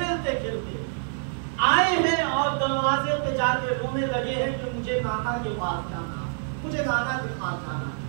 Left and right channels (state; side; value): silent; left; digital silence